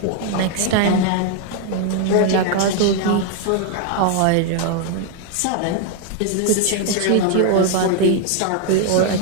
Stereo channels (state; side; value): different; both; correlation 0.00